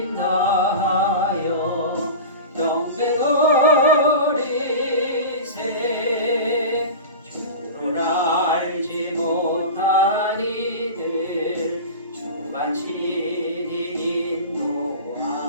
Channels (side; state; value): both; inverted; correlation -0.31